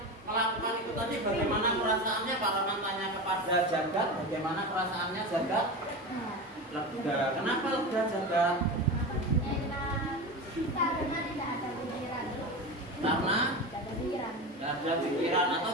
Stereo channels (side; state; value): both; normal; correlation 0.24